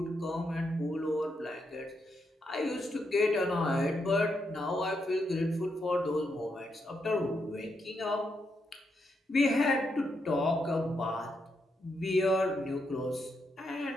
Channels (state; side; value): normal; both; correlation 0.81